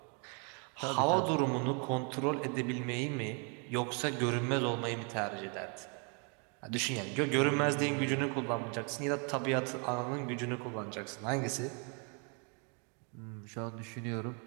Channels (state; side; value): quieter; left; 37.4 dB